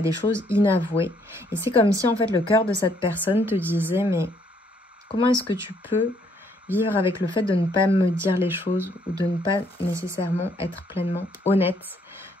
choses inavouées. Et c'est comme si en fait le cœur de cette personne te disait, mais comment est-ce que tu peux vivre avec le fait de ne pas me dire les choses ou de ne pas nécessairement être pleinement honnête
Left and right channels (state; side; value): normal; both; correlation 0.68